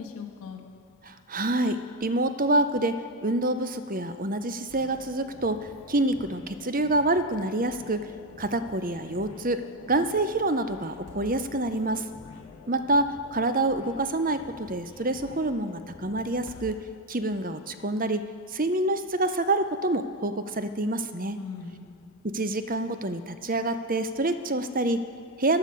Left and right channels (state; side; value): normal; both; correlation 0.09